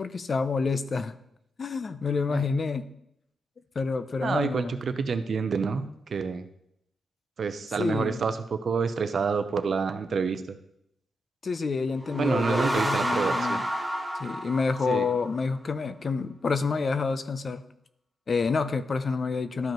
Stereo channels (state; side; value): normal; both; correlation 0.83